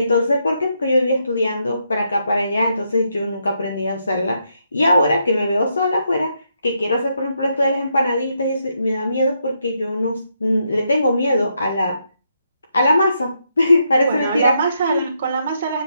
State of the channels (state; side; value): inverted; both; correlation -0.78